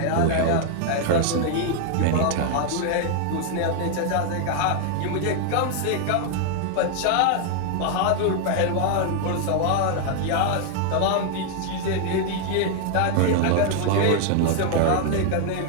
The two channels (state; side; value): different; both; correlation 0.00